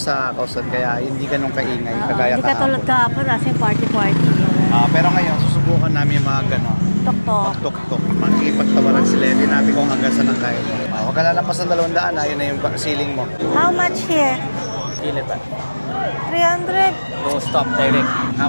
Kausan, kaya hindi ganun kaingay kagaya Hindi ka tulad kahapon kasi party-party. Pero ngayon susubukan namin yung mga gano'n. Tok-tok. Tuk-tuk. Makikipagtawaran sila. Hindi natin kung hanggang saan ang kaya. Huwag ka lalampas ng 200, ayun na yung ceiling mo. How much here? 300. No stop direct.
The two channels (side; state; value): both; inverted; correlation -1.00